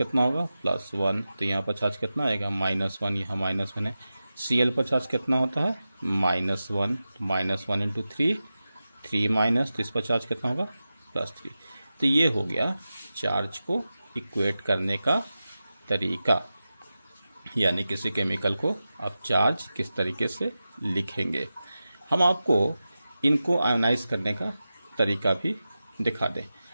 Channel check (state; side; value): inverted; both; correlation -0.93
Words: होगा +1। तो यहाँ पर चार्ज कितना आएगा -1, यहाँ -1 है। Cl पर चार्ज कितना होता है -1, -1 इंटू 3 माइनस, तो इस पर चार्ज कितना होगा +3। तो ये हो गया चार्ज को इक्वेट करने का तरीका, यानी किसी केमिकल को आप चार्ज किस तरीके से लिखेंगे। हम आपको इनको आयोनाइज करने का तरीका भी दिखा दें,